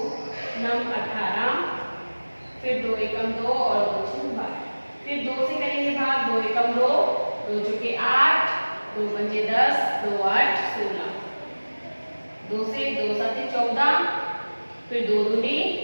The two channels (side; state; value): both; inverted; correlation -1.00